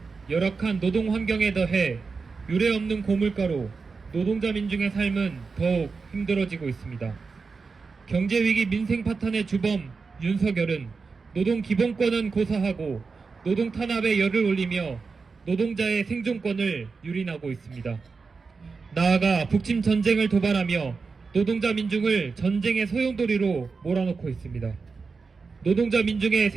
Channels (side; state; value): left; quieter; 4.7 dB